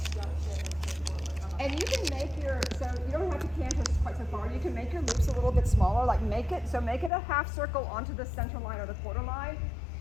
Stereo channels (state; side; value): drops out; right; at 7.1 s